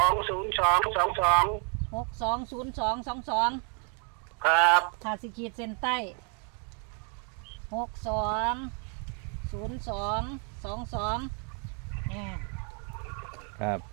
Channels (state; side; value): quieter; left; 38.9 dB